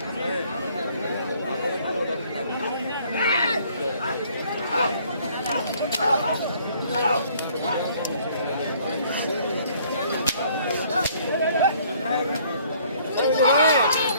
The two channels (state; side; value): inverted; both; correlation -0.60